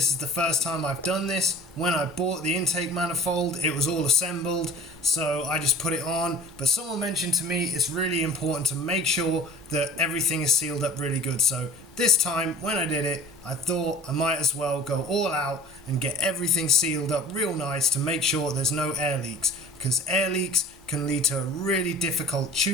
is the first time I've done this. When I bought the intake manifold, it was all assembled, so I just put it on. But someone mentioned to me it's really important to make sure that everything is sealed up really good. So this time, when I did it, I thought I might as well go all out and get everything sealed up real nice to make sure there's no air leaks, because air leaks can lead to a really difficult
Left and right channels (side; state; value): both; normal; correlation 0.44